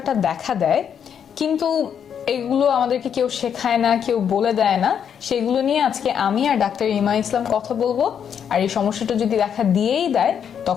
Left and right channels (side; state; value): right; quieter; 8.1 dB